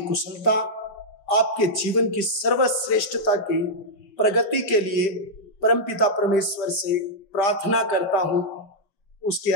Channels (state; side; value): late; right; 5.1 ms